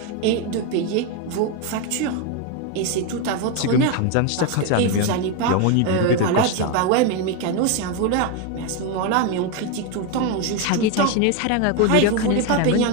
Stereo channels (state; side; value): different; both; correlation 0.02